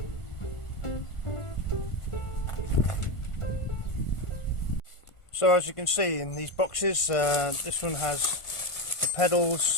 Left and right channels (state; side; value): late; right; 1.4 ms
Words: So as you can see in these boxes, this one has the